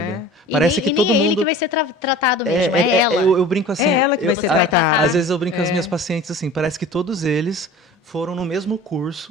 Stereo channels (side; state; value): both; normal; correlation 0.41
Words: Parece que nem é ele que vai ser tratado mesmo, é ela. Eu brinco assim. É ela que vai ser tratada. Às vezes eu brinco com as minhas pacientes assim, parece que todos eles foram no mesmo